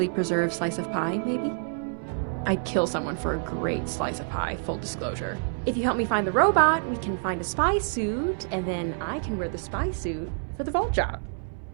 preserved slice of pie, maybe? I'd kill someone for a great slice of pie, full disclosure. If you help me find the robot, we can find a spy suit, and then I can wear the spy suit for the vault job.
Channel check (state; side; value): silent; left; 60 dB below the other